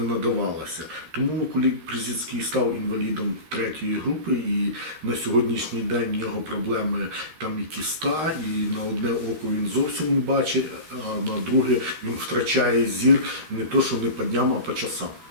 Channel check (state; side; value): late; left; 13 ms